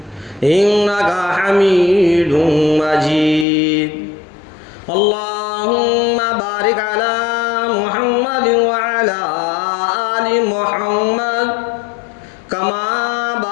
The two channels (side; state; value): right; drops out; at 3.5 s